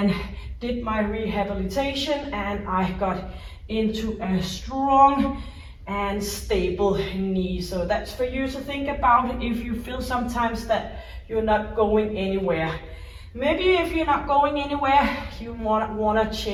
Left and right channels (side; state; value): both; identical; correlation 1.00